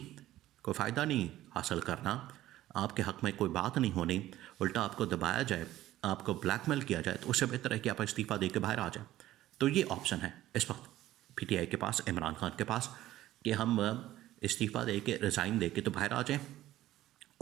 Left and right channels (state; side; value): quieter; left; 14.6 dB